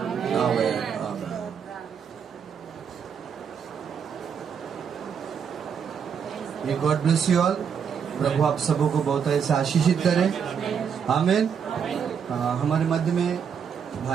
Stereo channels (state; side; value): quieter; left; 7.2 dB